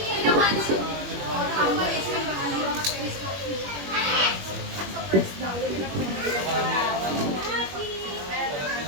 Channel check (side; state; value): left; late; 21 ms